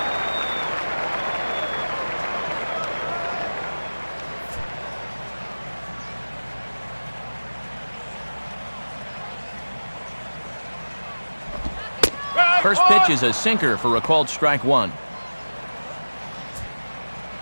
First pitch is a sinker for a called strike 1.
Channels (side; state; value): both; inverted; correlation -1.00